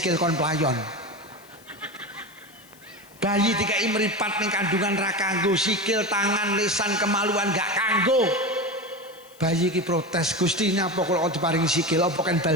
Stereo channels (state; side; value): noise; left; hiss, 26 dB below the sound